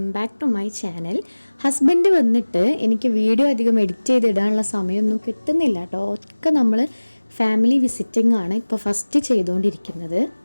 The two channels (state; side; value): inverted; both; correlation -1.00